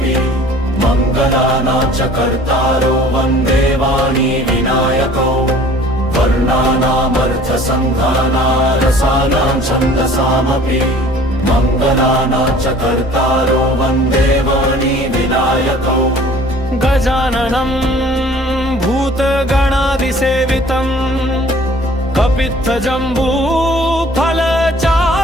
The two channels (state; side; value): normal; both; correlation 0.50